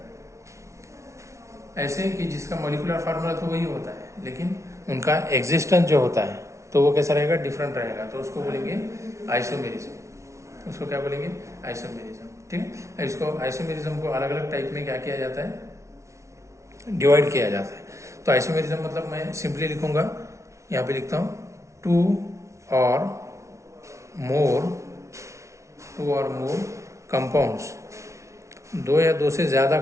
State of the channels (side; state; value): left; late; 0.14 ms